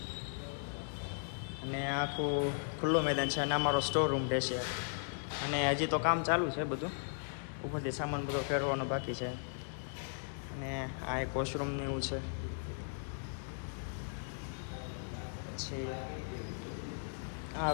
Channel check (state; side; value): silent; right; digital silence